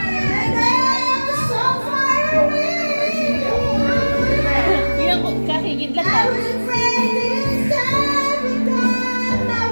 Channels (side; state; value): both; inverted; correlation -1.00